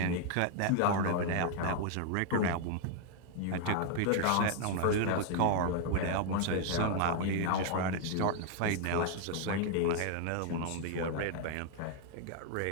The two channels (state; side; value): different; both; correlation -0.01